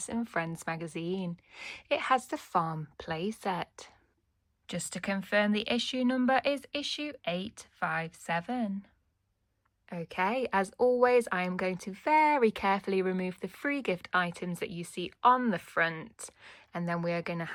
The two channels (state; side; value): identical; both; correlation 1.00